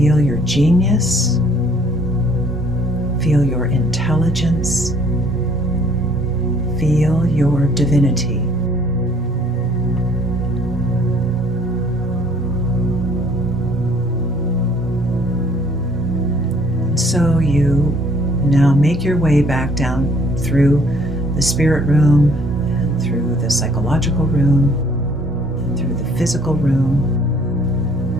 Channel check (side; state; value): both; normal; correlation 0.59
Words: your genius, feel your intelligence, feel your divinity. And so you now make your way back down through the spirit room, and through the psychological room, and through the physical room.